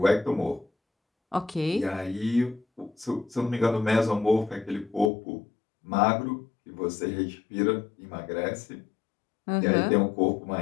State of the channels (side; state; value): right; drops out; at 5.1 s